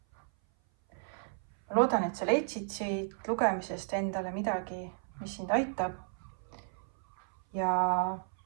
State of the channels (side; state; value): left; silent; 55 dB below the other